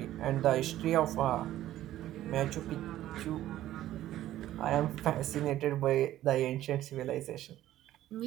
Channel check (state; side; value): quieter; left; 13.6 dB